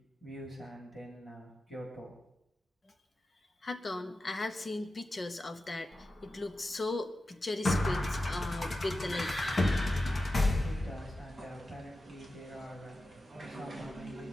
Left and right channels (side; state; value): both; normal; correlation 0.92